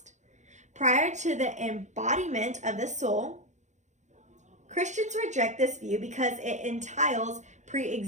Prior to the embodiment of the soul, Christians reject this view because it entails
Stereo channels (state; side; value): late; left; 0.34 ms